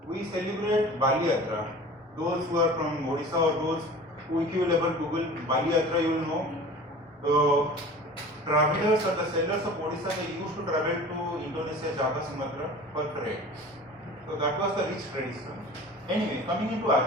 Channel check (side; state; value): both; normal; correlation 0.40